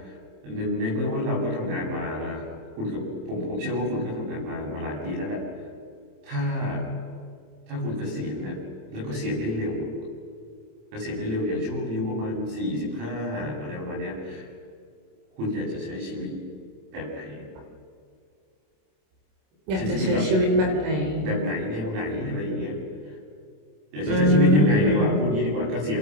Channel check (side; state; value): left; late; 27 ms